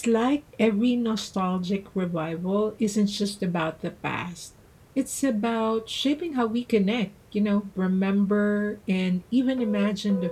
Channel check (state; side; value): identical; both; correlation 1.00